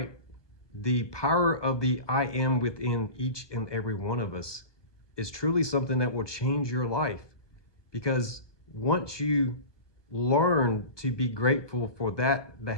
the power of the I am within each and every one of us is truly something that will change your life. Because once you learn to be grateful for that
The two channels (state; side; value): late; right; 1.2 ms